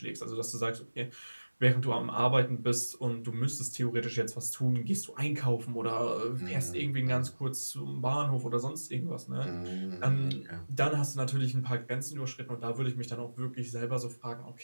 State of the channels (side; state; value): both; inverted; correlation -1.00